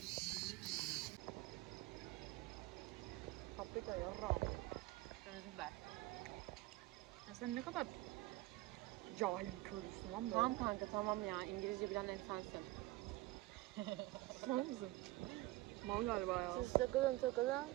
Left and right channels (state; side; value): quieter; left; 18.9 dB